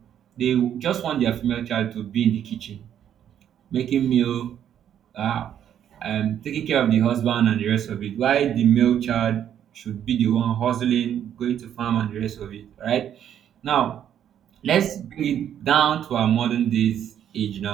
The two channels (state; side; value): quieter; left; 9.9 dB